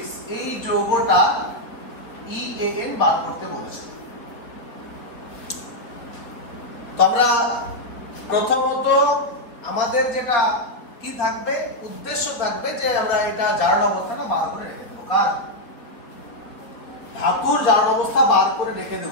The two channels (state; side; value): late; right; 4.1 ms